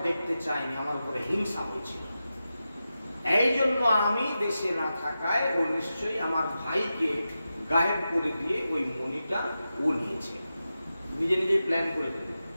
দেখতে চায়নি, আমার উপরে হিংসা হয়েছিল। এই জন্য আমি দেশে না থাকায় ও নিশ্চয়ই আমার ভাইকে গায়েব করে দিয়ে ওই মণিটা ও নিয়েছে। নিজে নিজেই প্ল্যান করে দেবে,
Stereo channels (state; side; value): inverted; both; correlation -0.91